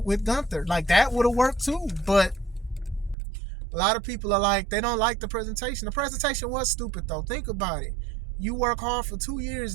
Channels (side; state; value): left; drops out; at 3.2 s